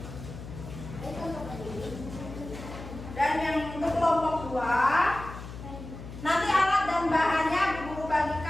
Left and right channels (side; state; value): left; noise; hum, 12 dB below the sound